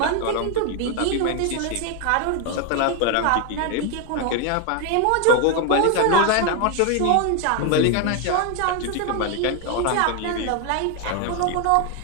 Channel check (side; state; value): both; different; correlation 0.01